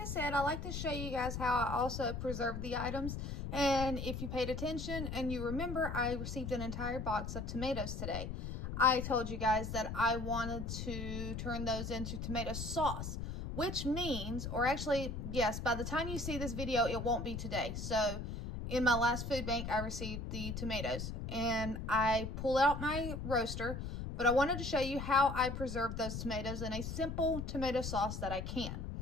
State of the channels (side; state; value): left; noise; rumble, 5 dB below the sound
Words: said, I like to show you guys how I also preserve the items. And if you paid attention and you remember, I received an entire box of tomatoes today. I told you guys that I wanted to turn those into tomato sauce, which means, or actually, yes, by the time you see this video, it won't be today. So in my last food bank, I received the tomatoes and I pull out my roaster. But I wanted to show you how I preserve those tomatoes in a simple tomato sauce that I can.